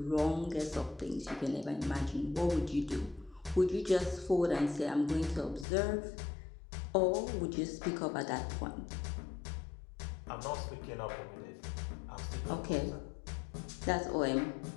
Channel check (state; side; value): drops out; right; at 5.7 s